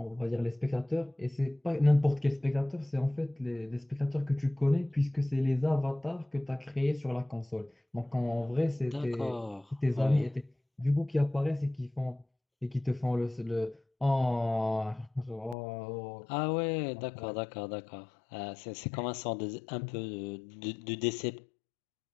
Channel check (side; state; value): right; drops out; at 15.6 s